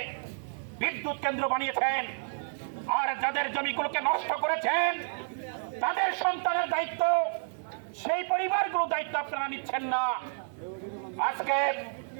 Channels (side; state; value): left; silent; 58 dB below the other